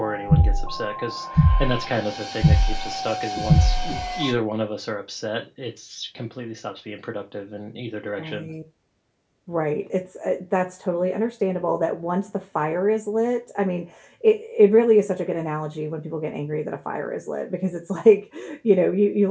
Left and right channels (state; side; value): identical; both; correlation 1.00